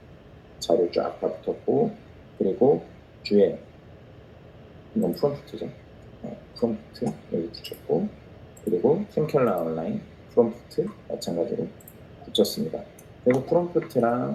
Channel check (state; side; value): identical; both; correlation 1.00